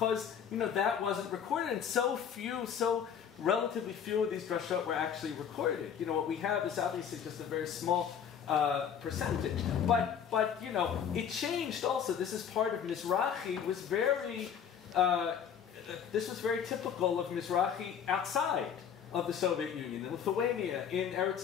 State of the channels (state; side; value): quieter; right; 8.0 dB